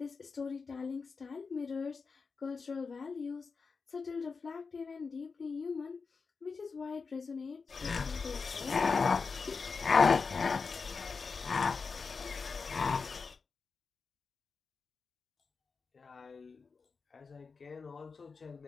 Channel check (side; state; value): right; quieter; 4.9 dB